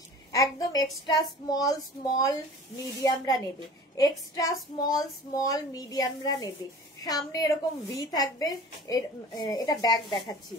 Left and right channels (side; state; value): both; normal; correlation 0.42